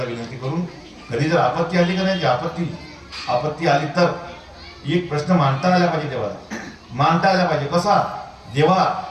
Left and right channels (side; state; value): both; identical; correlation 1.00